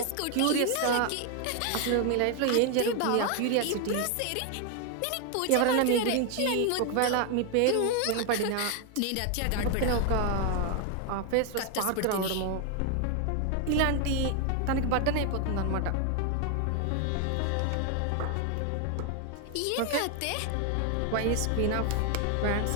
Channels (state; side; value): different; both; correlation 0.00